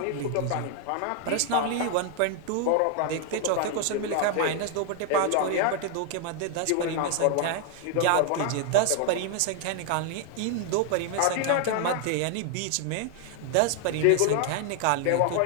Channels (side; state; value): both; different; correlation 0.00